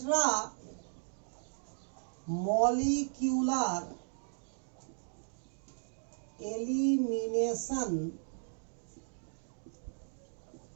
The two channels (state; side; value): silent; left; digital silence